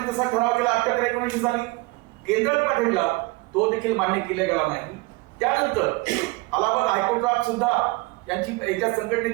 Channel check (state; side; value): quieter; left; 24.0 dB